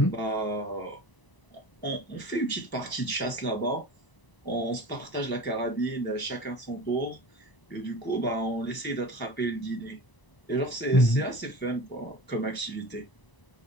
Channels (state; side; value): late; right; 1.0 ms